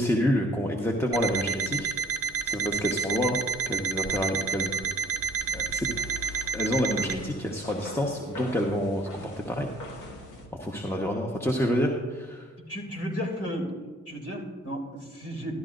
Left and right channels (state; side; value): normal; both; correlation 0.58